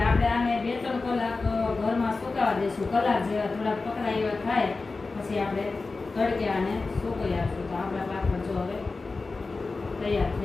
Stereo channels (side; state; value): right; quieter; 3.8 dB